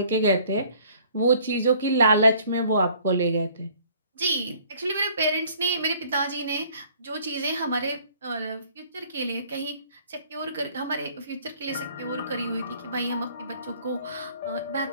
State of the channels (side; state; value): both; inverted; correlation -0.57